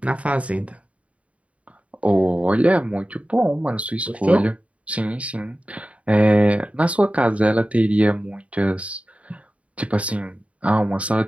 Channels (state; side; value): late; left; 0.065 ms